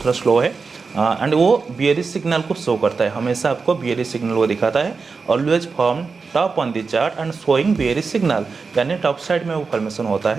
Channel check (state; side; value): quieter; left; 4.7 dB